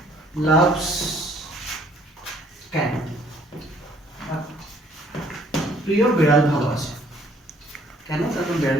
লাভস ক্যাট, প্রিয় বিড়াল ভালোবাসে। কেন? কারণ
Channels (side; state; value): both; normal; correlation 0.61